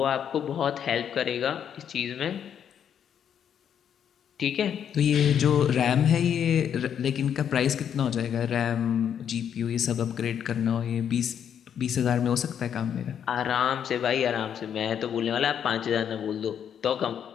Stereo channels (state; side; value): quieter; right; 8.7 dB